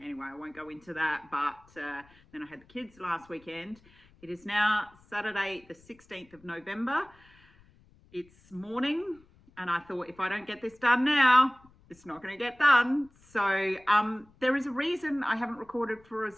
Anyway, I won't go into that, but then I had the kids last weekend. It is now Saturday, the 16th of November. It's morning, and I thought if I don't get this done now, it's not going to get done. So there is a reason I haven't recorded for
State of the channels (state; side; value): noise; left; rumble, 29 dB below the sound